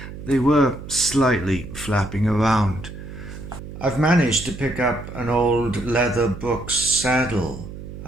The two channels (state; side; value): noise; right; hum, 12 dB below the sound